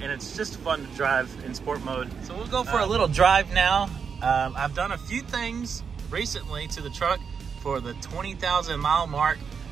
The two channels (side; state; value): left; quieter; 6.3 dB